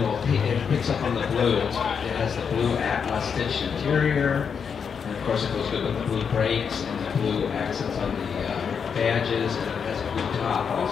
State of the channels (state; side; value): quieter; right; 6.6 dB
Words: it picks up on the blue. It has the blue stitched interior, and of course it goes good with the blue brakes and the blue accents on the badges, and it has a blue top